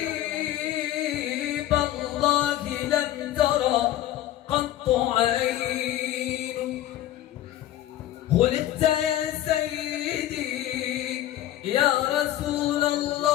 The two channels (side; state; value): right; quieter; 13.2 dB